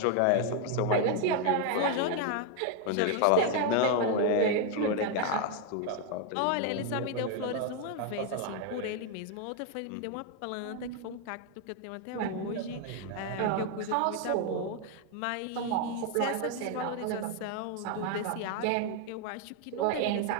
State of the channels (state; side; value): different; both; correlation 0.01